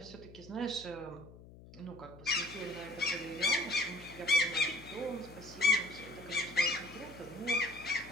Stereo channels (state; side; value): noise; left; hum, 19 dB below the sound